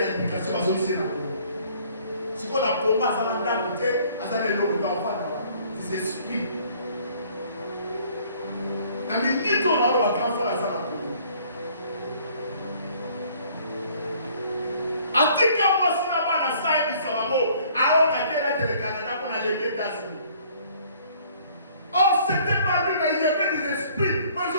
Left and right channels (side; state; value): both; inverted; correlation -0.58